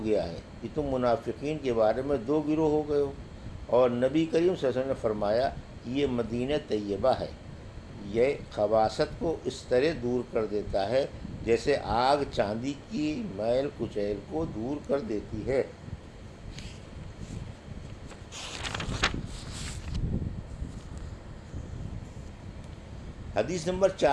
گیا ہے کہ تم منافقین کے بارے میں دو گروہ ہو گئے ہو۔ اور نبی کریم صلی اللہ علیہ وسلم نے فرمایا کہ یہ مدینہ طیبہ ہے، یہ خباثت کو اس طرح دور کر دیتا ہے جیسے آگ چاندی کی میل کچیل کو دور کر دیتی ہے۔ حدیث نمبر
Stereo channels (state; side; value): identical; both; correlation 1.00